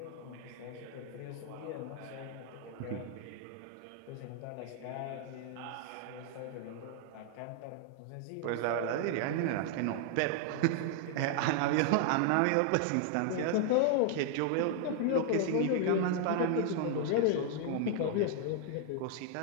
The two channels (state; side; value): different; both; correlation 0.00